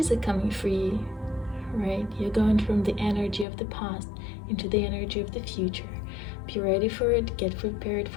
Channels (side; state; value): right; drops out; at 3.5 s